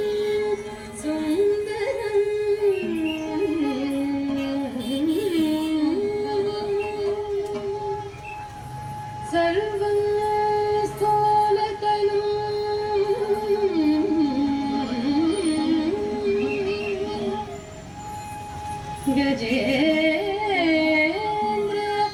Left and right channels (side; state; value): both; identical; correlation 1.00